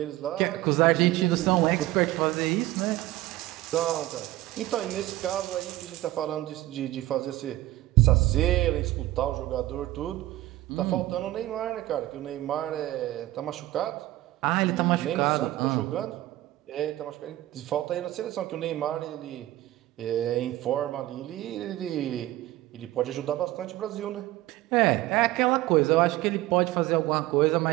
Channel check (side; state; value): left; quieter; 16.2 dB